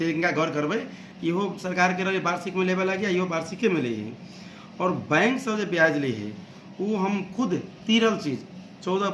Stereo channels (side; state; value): both; identical; correlation 1.00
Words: इनका गौर करबे। इहो सरकार के रहे वार्षिक में लेवे लगे, इहो वार्षिक में ले। और बैंक से जो ब्याज ले वो हम खुद तीरल चीज़